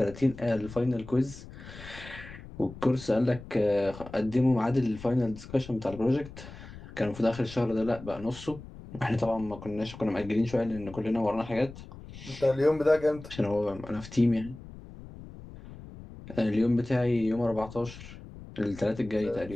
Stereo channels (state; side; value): noise; left; rumble, 15 dB below the sound